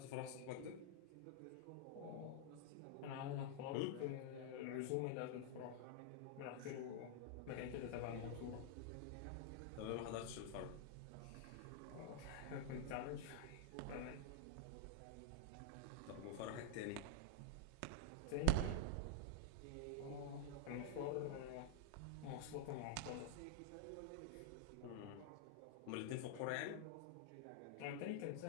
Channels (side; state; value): both; different; correlation 0.00